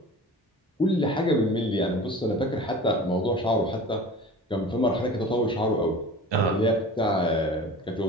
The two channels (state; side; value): normal; both; correlation 0.38